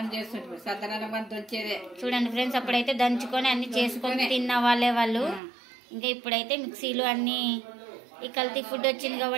చేస్తుంటారు. సద్దనం అంత వచ్చేదే. చూడండి ఫ్రెండ్స్, అప్పుడైతే దంచుకొని అన్ని చేసుకొని తిన్న వాళ్ళే వాళ్ళు. ఇంకా ఇప్పుడైతే మిక్సీలు అన్ని ఈ కల్తీ ఫుడ్ వచ్చింది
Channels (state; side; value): drops out; left; at 5.4 s